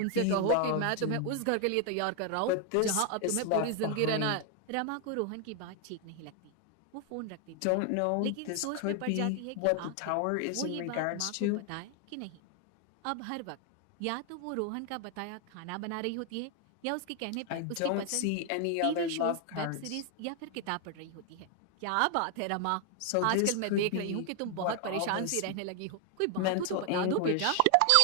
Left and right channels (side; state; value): both; different; correlation 0.00